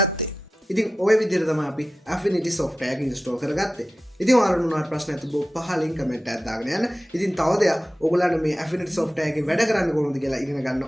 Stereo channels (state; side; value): normal; both; correlation 0.93